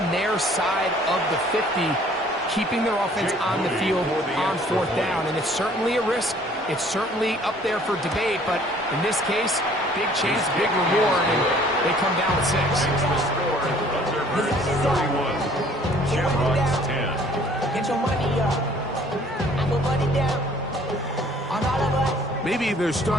their side of the 50, keeping their offense on the field on fourth down. And it's certainly a risk. It's certainly up there for debate, but in this case, big chance, big reward, and they come down with 6. Third 31. Shamrocks 10. Get your money up. I put money down on all of us. Maybe they're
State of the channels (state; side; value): normal; both; correlation 0.56